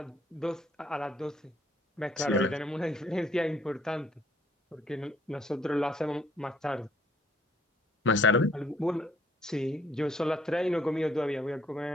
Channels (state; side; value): normal; both; correlation 0.64